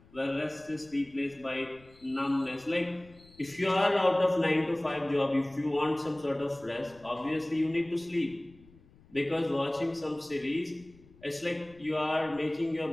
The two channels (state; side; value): noise; left; rumble, 26 dB below the sound